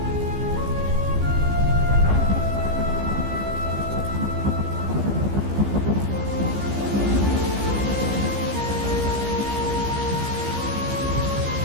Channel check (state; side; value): late; left; 15 ms